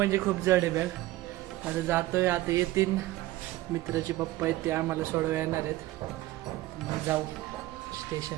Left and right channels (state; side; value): quieter; left; 16.9 dB